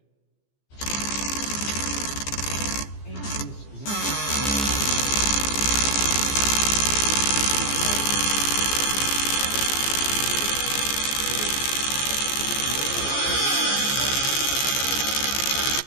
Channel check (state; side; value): late; right; 15 ms